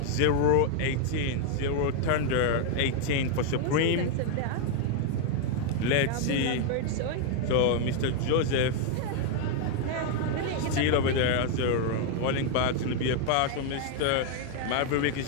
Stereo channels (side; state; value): both; different; correlation 0.00